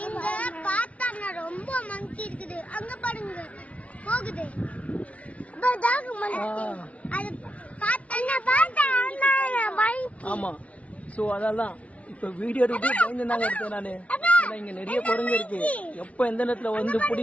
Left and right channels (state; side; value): late; right; 0.065 ms